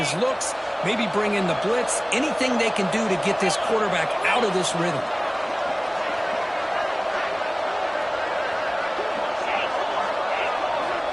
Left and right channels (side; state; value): both; identical; correlation 1.00